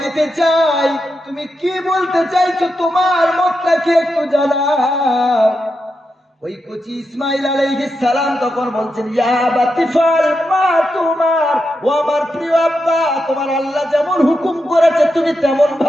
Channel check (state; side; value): normal; both; correlation 0.86